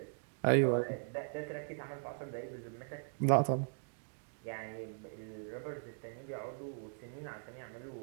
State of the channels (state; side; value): silent; left; digital silence